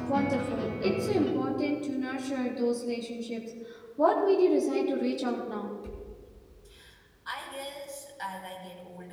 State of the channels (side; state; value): both; identical; correlation 1.00